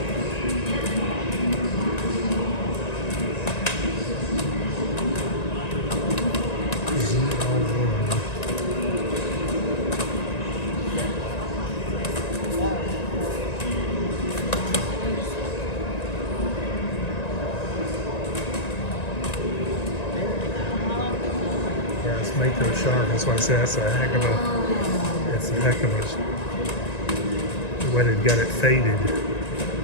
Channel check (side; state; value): right; late; 1.9 ms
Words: Yeah, it's Mako shark. That's why I say that's a heck of a. It's a heck of a. The way they've got it faded.